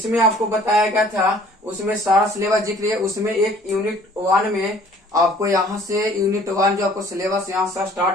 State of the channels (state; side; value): normal; both; correlation 0.55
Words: आपको बताया गया था, उसमें सारा सिलेबस जिक्र है। उसमें एक यूनिट 1 में आपको यहाँ से यूनिट 1 जो आपको सिलेबस यहाँ से